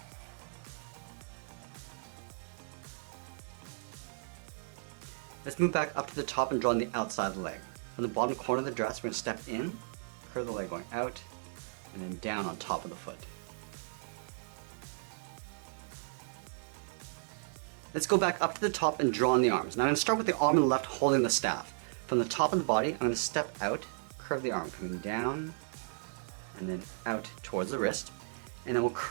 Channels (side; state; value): left; silent; 54 dB below the other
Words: Let's move back up to the top and draw on the outside of the leg. From the bottom corner of the dress, we're going to step in, curve the leg going out, and then down on top of the foot. Let's go back up to the top and draw on the arms. Now I'm going to start with the arm on the left holding the staff. From the top of the body, I'm going to step out, curve the arm, coming down, and then out towards the wrist, and then we'll